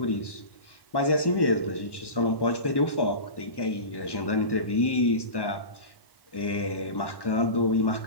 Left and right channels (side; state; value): right; late; 1.1 ms